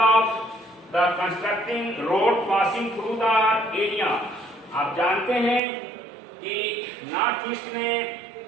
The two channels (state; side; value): drops out; left; at 5.6 s